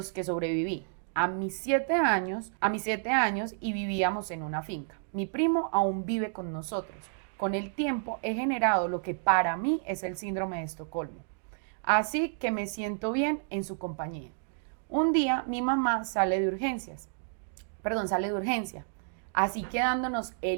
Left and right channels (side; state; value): left; silent; digital silence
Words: que sobreviví. A mis 7 años y vivíamos en una finca. Mi primo aún vive con nosotros. Con el tiempo he generado lo que para mí es el síndrome de Estocolmo. Así que me siento bien en su compañía. Un día mi mamá sale de urgencia, así quedándonos